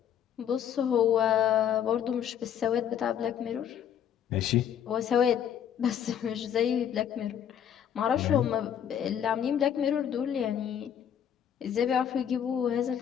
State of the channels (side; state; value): right; quieter; 9.2 dB